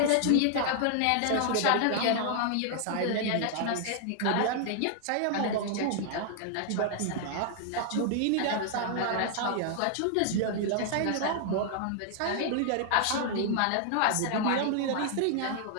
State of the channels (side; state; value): both; different; correlation 0.00